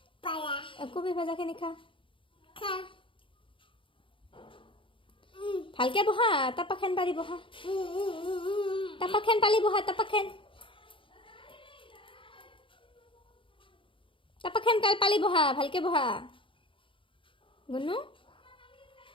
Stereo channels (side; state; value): right; late; 0.25 ms